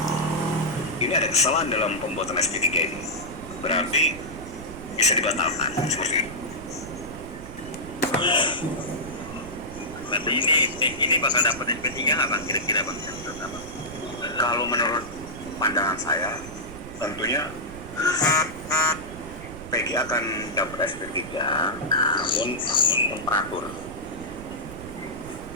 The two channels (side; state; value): right; noise; rumble, 13 dB below the sound